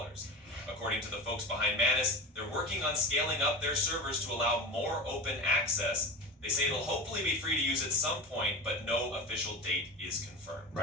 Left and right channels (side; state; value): both; normal; correlation 0.28